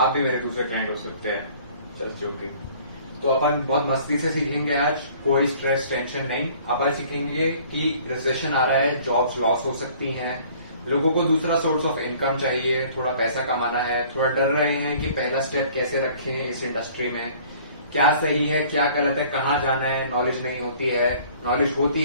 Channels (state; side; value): inverted; both; correlation -0.53